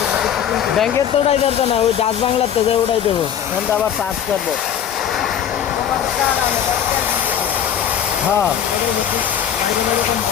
ব্যাংকের তো উঠাই যাবে না, ওই ডাচ বাংলার তো যে উঠাই দেবো, এখানটা আবার চার্জ করবো। হ্যাঁ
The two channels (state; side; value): quieter; right; 9.3 dB